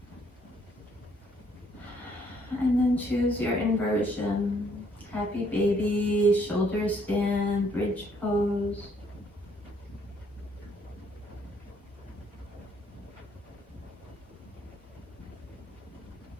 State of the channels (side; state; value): both; normal; correlation 0.67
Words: And then choose your inversion. Happy baby, shoulder stand, bridge pose.